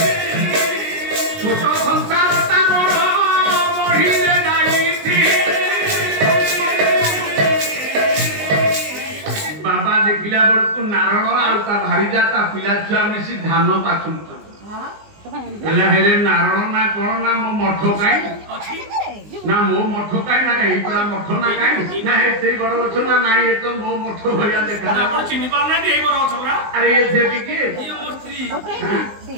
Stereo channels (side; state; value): left; late; 19 ms